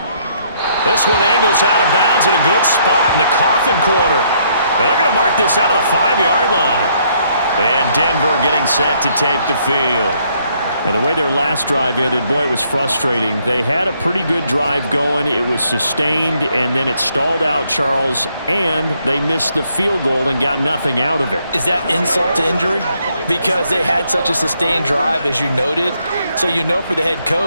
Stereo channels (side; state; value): both; inverted; correlation -0.70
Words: This one angles out of bounds in a good spot in the coffin corner. And they're going to mark this out of the 5-yard line. And Denver getting set to take the field. And the way their last drive ended, boy, it was frustrating. They had a pretty good drive going. It was sustained, and then it stalled out, Charles, and they missed the field goal and got nothing out of it. Is that insult to injury? Because they had such a sustained drive, as you noted. So you know for the head